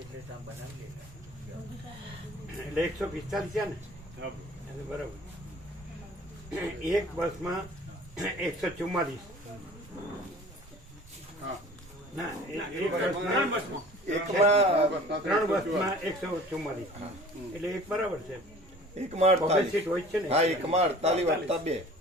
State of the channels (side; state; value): both; normal; correlation 0.46